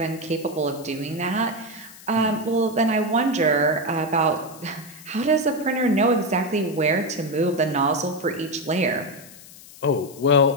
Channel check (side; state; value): left; noise; hiss, 19 dB below the sound